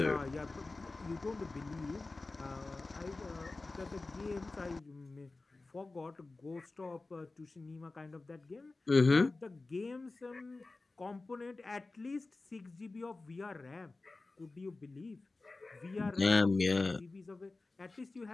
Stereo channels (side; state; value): right; quieter; 3.4 dB